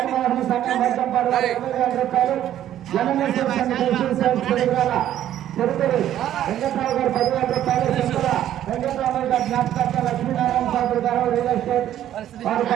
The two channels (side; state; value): left; quieter; 11.7 dB